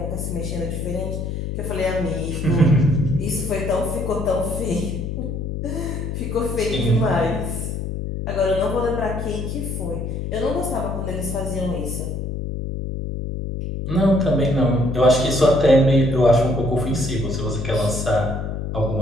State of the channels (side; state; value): left; noise; hum, 4 dB below the sound